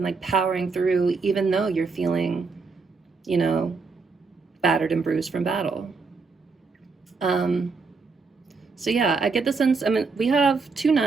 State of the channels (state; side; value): quieter; left; 4.5 dB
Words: like powering through, even though you're feeling, you know, battered and bruised from battle. So yeah, I get the sense, I mean, we have 2